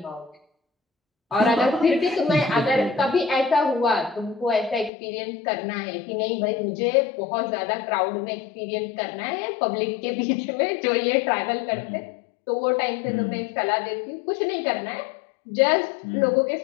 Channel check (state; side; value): drops out; right; at 4.9 s